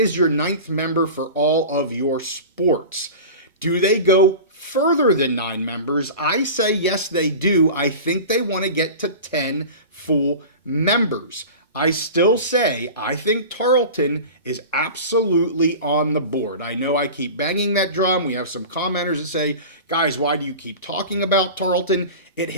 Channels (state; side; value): inverted; both; correlation -0.33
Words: your 9th member for all of your sports. Do they go further than 9 members? I say yes, they do. I think they want to get to 10 full members. I still say I think Tarleton is absolutely on the board. I know I keep banging that drum. We have some commenters that say, guys, why do you keep talking about Tarleton? It